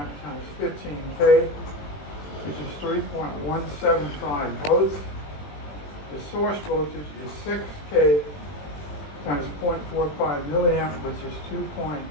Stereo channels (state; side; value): late; right; 21 ms